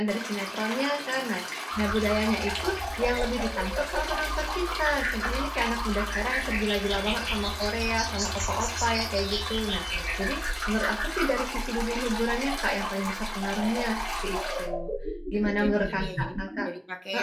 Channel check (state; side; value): identical; both; correlation 1.00